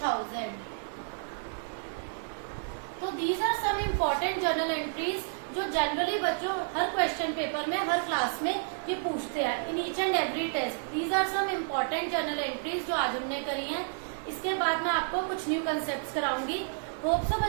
तो these are some important journal entries जो जनरली बच्चों हर क्वेश्चन पेपर में, हर क्लास में ये पूछते हैं in each and every test. These are some important journal entries जो आज हमने करी हैं. इसके बाद मैं आपको कुछ न्यू कंसेप्ट कराऊंगी. होप सो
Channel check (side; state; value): left; silent; 57 dB below the other